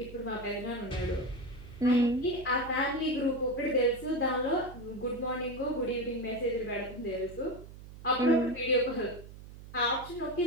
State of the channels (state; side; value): noise; right; hum, 16 dB below the sound